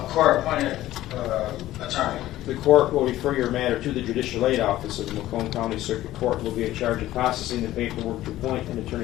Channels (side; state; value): right; quieter; 14.9 dB